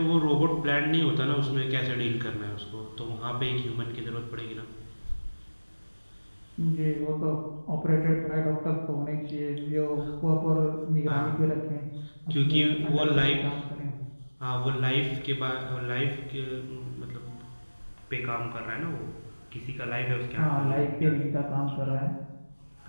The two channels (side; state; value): both; inverted; correlation -1.00